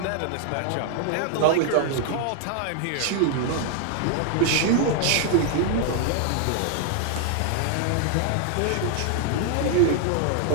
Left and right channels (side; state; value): both; different; correlation 0.00